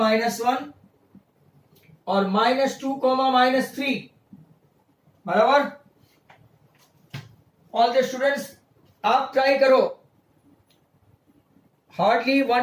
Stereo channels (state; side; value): identical; both; correlation 1.00